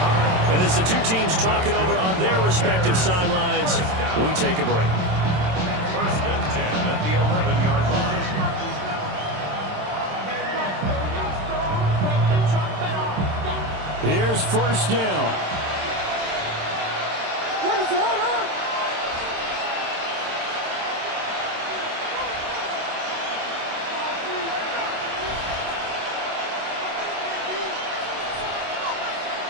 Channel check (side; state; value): left; late; 27 ms